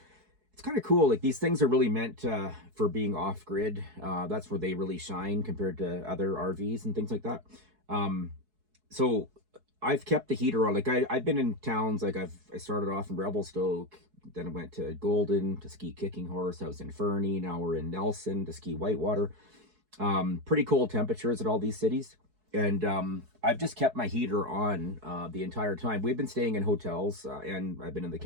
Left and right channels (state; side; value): late; left; 4.7 ms